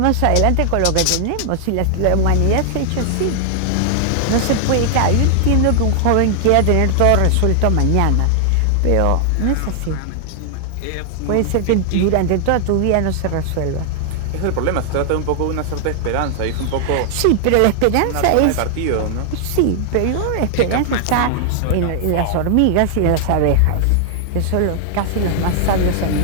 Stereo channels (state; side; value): different; both; correlation 0.00